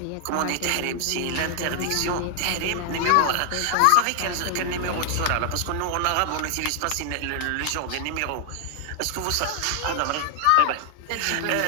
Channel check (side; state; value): both; different; correlation 0.00